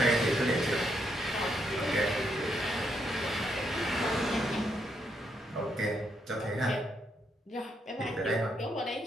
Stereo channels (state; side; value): normal; both; correlation 0.77